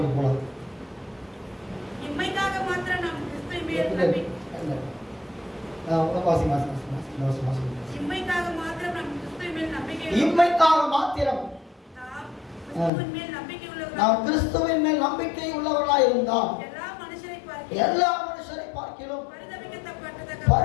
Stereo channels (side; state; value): right; drops out; at 12.9 s